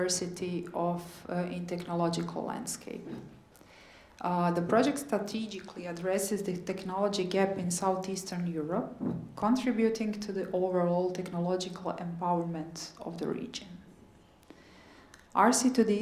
in technological landscape. The project strategically addresses the technology gap in Southeastern Europe, contributing to the overall technological empowerment of the region.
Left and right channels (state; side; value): identical; both; correlation 1.00